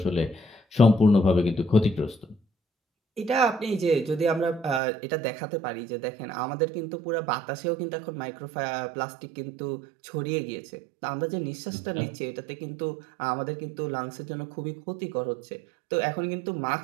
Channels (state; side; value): drops out; left; at 4.8 s